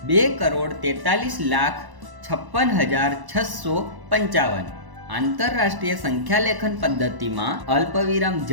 2,43,56,655। આંતરરાષ્ટ્રીય સંખ્યાલેખન પદ્ધતિમાં અલ્પવિરામ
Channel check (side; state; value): left; late; 1.0 ms